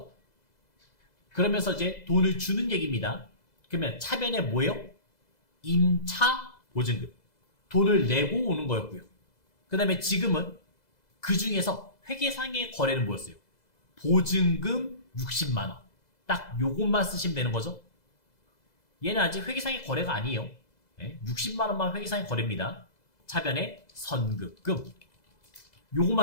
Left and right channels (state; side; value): late; right; 2.0 ms